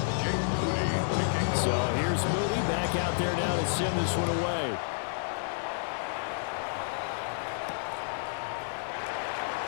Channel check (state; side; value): silent; right; digital silence